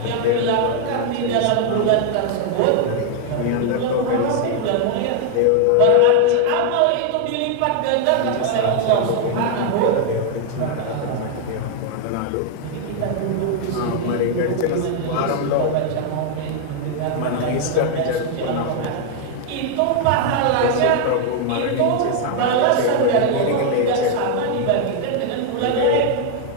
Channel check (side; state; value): both; different; correlation 0.00